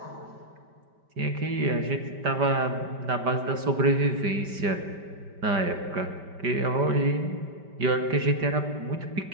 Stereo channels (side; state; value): left; late; 5.1 ms